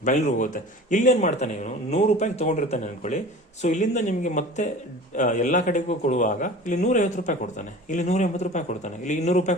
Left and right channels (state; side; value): normal; both; correlation 0.40